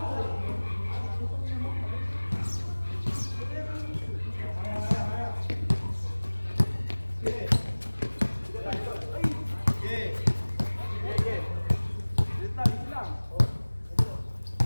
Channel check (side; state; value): both; inverted; correlation -1.00